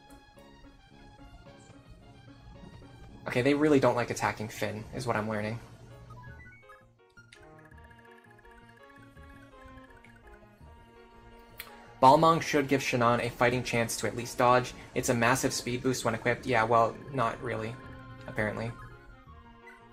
Okay, they really don't like attacking Finn, is what I'm learning. Balmong should give Shannon a fighting chance to at least dodge. It's a massive speed boost when equipped. Yeah, well, not really, apparently.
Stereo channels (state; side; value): identical; both; correlation 1.00